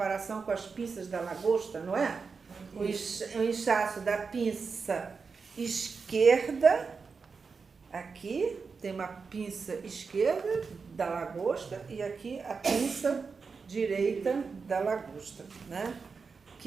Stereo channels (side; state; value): left; quieter; 5.0 dB